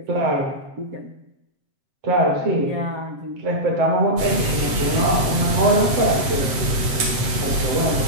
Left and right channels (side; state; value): left; late; 7.6 ms